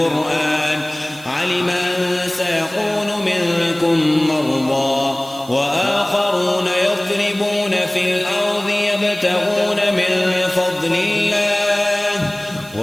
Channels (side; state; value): right; noise; hiss, 21 dB below the sound